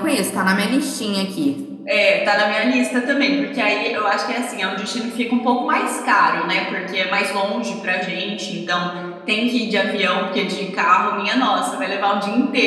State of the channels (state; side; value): identical; both; correlation 1.00